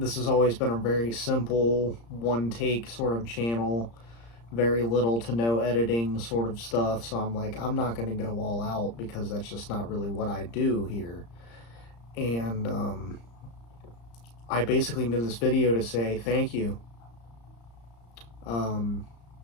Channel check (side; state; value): right; late; 35 ms